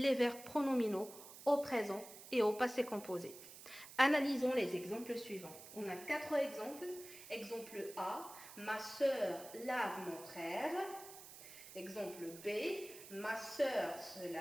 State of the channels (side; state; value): right; noise; hiss, 15 dB below the sound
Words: verbes pronominaux au présent et au passé composé. Analysons les exemples suivants. On a 4 exemples. Exemple A, ma sœur lave mon frère. Exemple B, ma sœur se